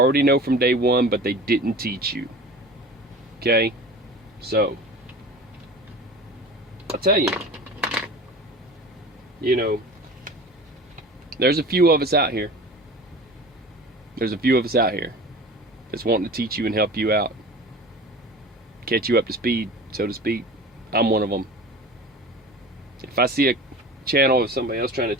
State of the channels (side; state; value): both; normal; correlation 0.37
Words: know from day one, but they didn't teach you. Okay? So, I'll tell you, there's a few of us out here. There's a few of us out here that's wanting to teach you and help you out. Catch you up to speed, so to speak. I'm one of them. If I see a channel of somebody else trying to